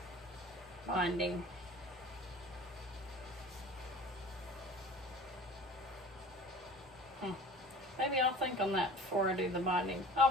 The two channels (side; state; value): both; normal; correlation 0.42